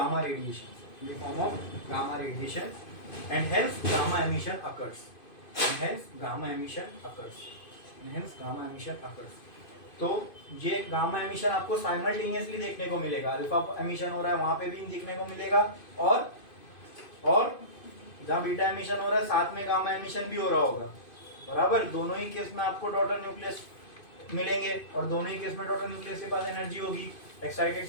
radiation. In the form of gamma radiation, and hence gamma emission occurs. And hence gamma emission occurs. And hence gamma emission occurs. तो ये gamma emission आपको simultaneously देखने को मिलेगा. Alpha emission हो रहा है वहां पे भी देखने को मिलेगा, और जहां बीटा एमिशन हो रहा है साथ में गामा एमिशन भी हो रहा होगा. बराबर, दोनों ही केस में आपको डॉटर न्यूक्लियस मिलेंगे, और दोनों ही केस में डॉटर न्यूक्लियस के पास एनर्जी होगी. एक्साइटेड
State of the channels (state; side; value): late; right; 2.5 ms